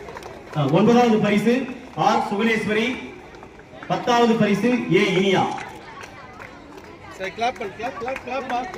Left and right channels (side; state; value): both; identical; correlation 1.00